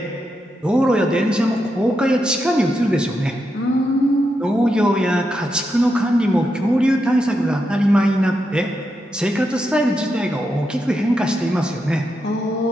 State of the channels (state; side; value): normal; both; correlation 0.85